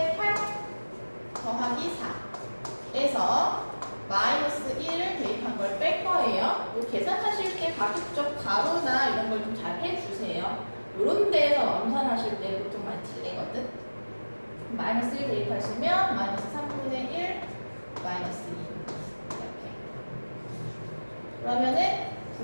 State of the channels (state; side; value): inverted; both; correlation -1.00